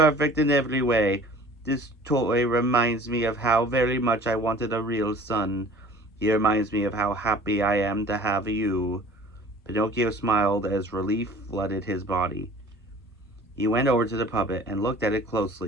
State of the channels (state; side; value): normal; both; correlation 0.46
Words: in every way. This toy reminds me of how very much I wanted a real son. He reminds me of how happy I am to have you." Pinocchio smiled as relief flooded his body. He went over to the puppet and looked at it